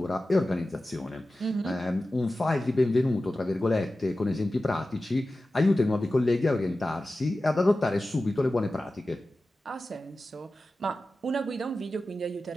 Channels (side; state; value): both; normal; correlation 0.94